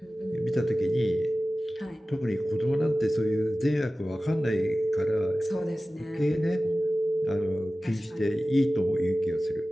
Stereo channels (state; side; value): normal; both; correlation 0.96